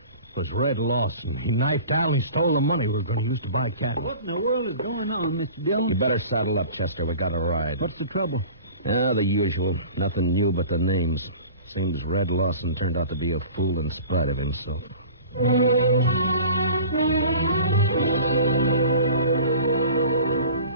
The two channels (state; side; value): inverted; both; correlation -0.42